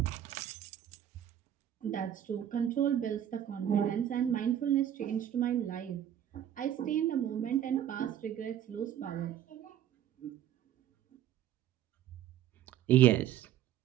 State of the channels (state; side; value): quieter; left; 10.9 dB